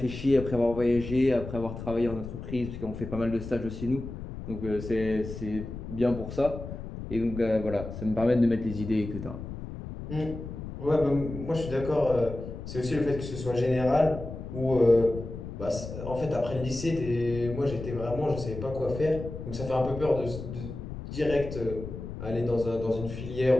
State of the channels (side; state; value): left; noise; rumble, 9 dB below the sound